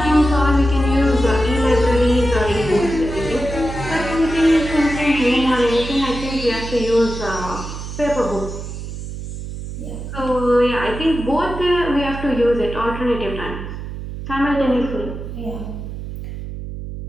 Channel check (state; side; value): noise; right; hum, 8 dB below the sound